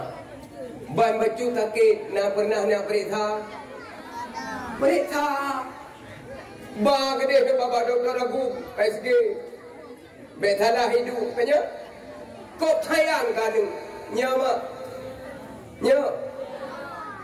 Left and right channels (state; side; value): identical; both; correlation 1.00